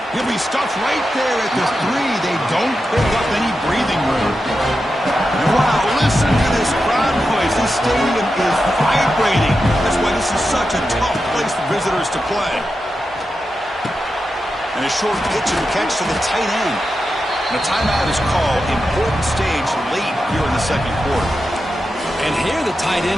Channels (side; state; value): both; normal; correlation 0.89